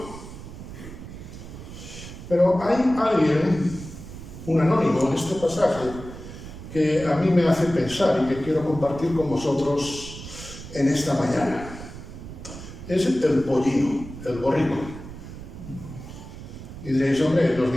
Pero hay alguien, un anónimo en este pasaje, que a mí me hace pensar y que quiero compartir con vosotros en esta mañana. Es el pollino, el borrico. Y diréis, hombre, ¿nos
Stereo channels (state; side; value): noise; right; rumble, 13 dB below the sound